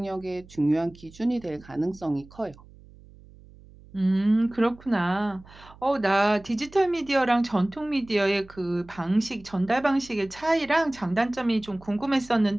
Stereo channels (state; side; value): noise; right; hum, 23 dB below the sound